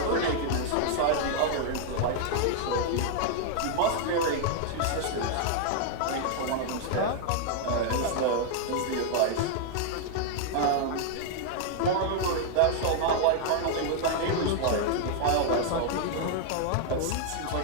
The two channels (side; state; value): both; different; correlation 0.00